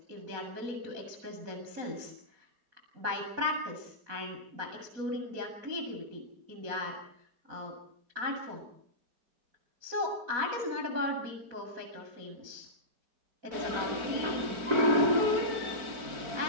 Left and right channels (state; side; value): late; left; 4.5 ms